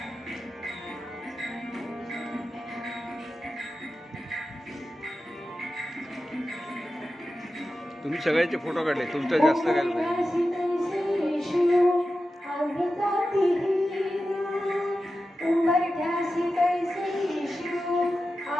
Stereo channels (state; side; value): normal; both; correlation 0.92